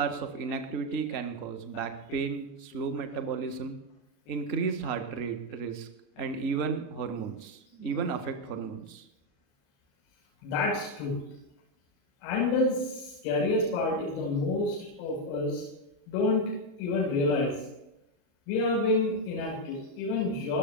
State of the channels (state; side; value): late; right; 33 ms